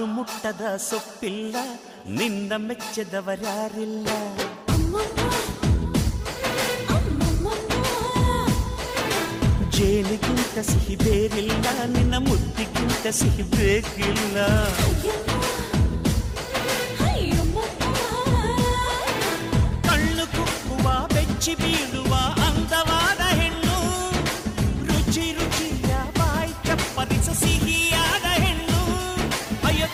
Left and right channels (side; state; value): both; identical; correlation 1.00